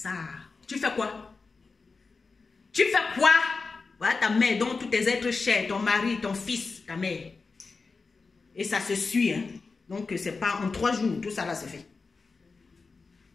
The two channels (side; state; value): right; quieter; 4.3 dB